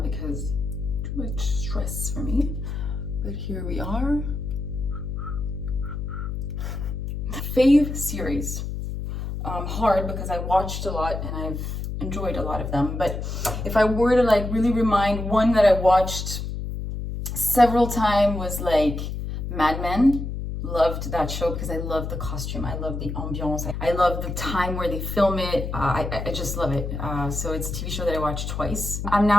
too much stress for me, but here we are. Fave series. Hard because I watched a lot and I've enjoyed a lot of them, but if I were to like really remind, one that I watched several times was like Mad Men. Loved that show because I love the costume, I love the ambiance, I love the time where they film it. I just love it. So it's a TV show that I watched twice. I'm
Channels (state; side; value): noise; left; hum, 5 dB below the sound